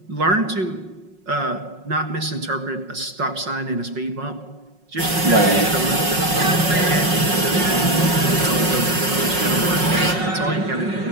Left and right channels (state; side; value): late; left; 5.5 ms